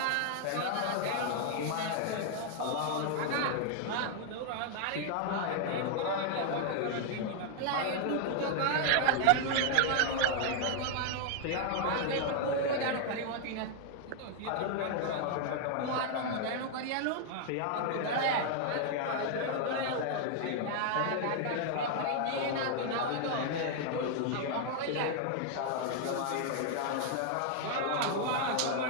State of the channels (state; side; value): different; both; correlation 0.00